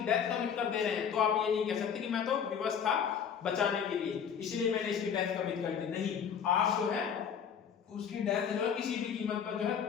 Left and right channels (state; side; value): quieter; right; 7.6 dB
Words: डेथ कमिट कर दे रहे हैं, तो आप ये नहीं कह सकते कि मैं तो विवश था बचाने के लिए इसलिए मैंने इसकी डेथ कमिट कर दी। नहीं, आप जो है उसकी डेथ जो है किसी भी कीमत पर जो है